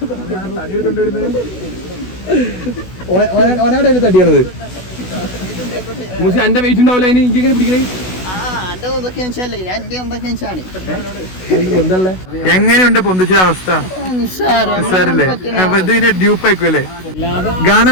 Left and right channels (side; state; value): right; late; 16 ms